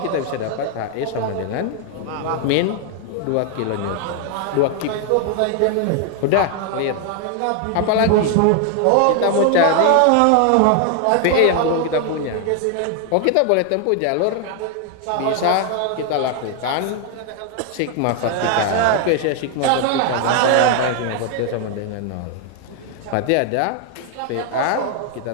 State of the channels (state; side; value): different; both; correlation 0.00